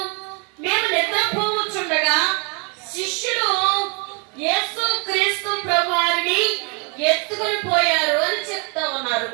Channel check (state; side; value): quieter; left; 34.5 dB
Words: మేము నిద్రపోవచ్చుండగా శిష్యులు యేసు క్రీస్తు ప్రభువారిని ఎత్తుకొని పోయారు అని చెప్తా ఉన్నారు.